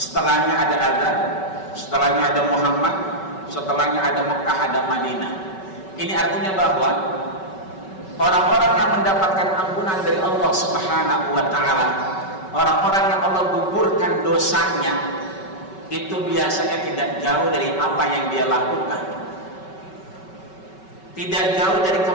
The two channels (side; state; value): right; late; 5.3 ms